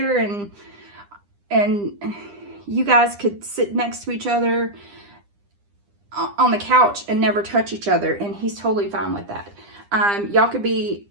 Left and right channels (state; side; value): late; left; 9.9 ms